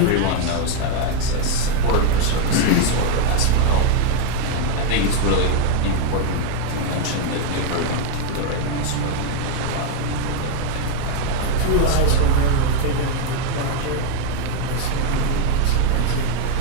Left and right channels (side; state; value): both; different; correlation 0.00